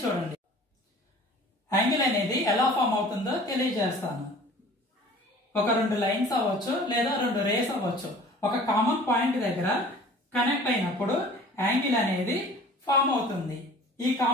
చూడండి. యాంగిల్ అనేది ఎలా ఫామ్ అవుతుందో తెలియజేస్తాను. ఒక రెండు లైన్స్ అవ్వచ్చు లేదా రెండు రేస్ అవ్వచ్చు. ఒక కామన్ పాయింట్ దగ్గర కనెక్ట్ అయినప్పుడు యాంగిల్ అనేది ఫామ్ అవుతుంది. ఈ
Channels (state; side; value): normal; both; correlation 0.47